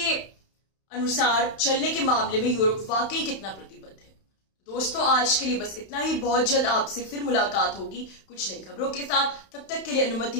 अनुसार चलने के मामले में यूरोप वाकई कितना प्रतिबद्ध है। दोस्तों, आज के लिए बस इतना ही। बहुत जल्द आपसे फिर मुलाकात होगी कुछ नई खबरों के साथ। तब तक के लिए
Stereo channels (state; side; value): late; right; 31 ms